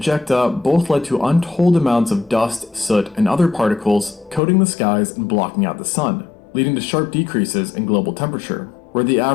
both led to untold amounts of dust, soot, and other particles coating the skies and blocking out the sun, leading to sharp decreases in global temperature, where the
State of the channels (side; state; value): right; drops out; at 4.4 s